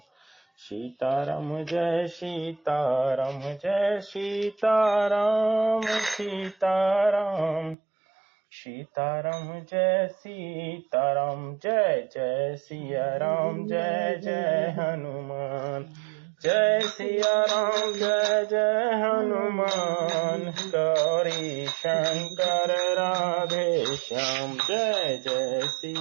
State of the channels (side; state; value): left; drops out; at 7.8 s